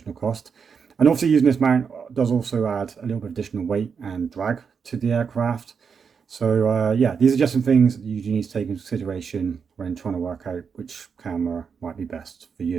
cost. And obviously using this mount does also add a little bit of additional weight and drag to the aircraft. So yeah, these are just some things that you need to take into consideration when trying to work out which camera might be best for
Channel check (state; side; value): quieter; left; 6.2 dB